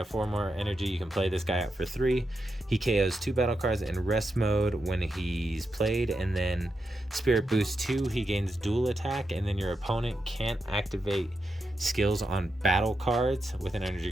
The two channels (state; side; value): normal; both; correlation 0.86